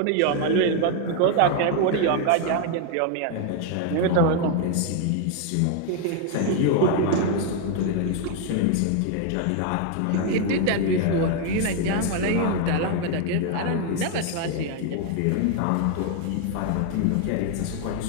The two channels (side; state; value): both; different; correlation 0.01